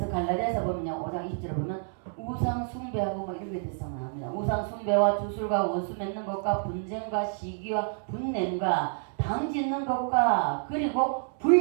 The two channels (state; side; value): silent; left; 59 dB below the other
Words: 갈라디아서 보면요, 5장 20절에 보면 우상 숭배하고 뭐 이런 게 대상 나옵니다. 우상 숭배와 주술과 원수 맺는 것과 분쟁과 시기와 분냄과 당 짓는 것과 그리고